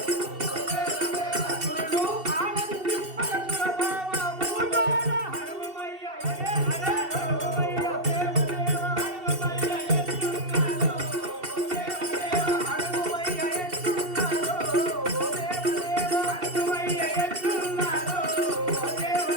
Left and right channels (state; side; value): late; left; 2.7 ms